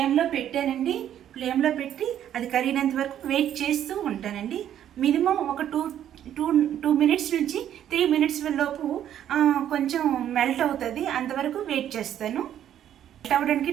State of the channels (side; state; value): left; quieter; 10.6 dB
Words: పెట్టానండి. ఫ్లేమ్లో పెట్టి అది కరిగినంత వరకు వెయిట్ చేస్తూ ఉంటానండి. మినిమం ఒక 2 minutes నుంచి 3 minutes లోపు కొంచెం మెల్ట్ అవుతుంది. అంతవరకు వెయిట్ చేస్తాను. మెల్ట్ అవ్వడానికి